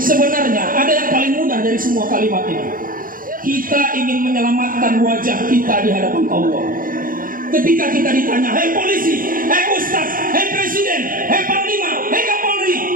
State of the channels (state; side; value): late; left; 0.40 ms